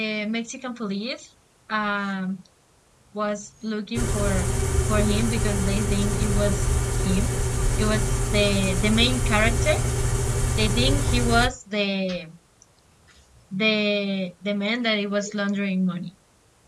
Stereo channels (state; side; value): identical; both; correlation 1.00